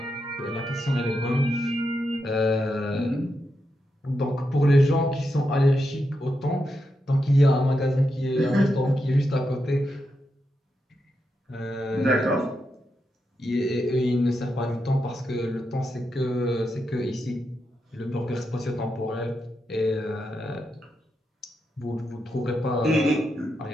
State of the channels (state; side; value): normal; both; correlation 0.85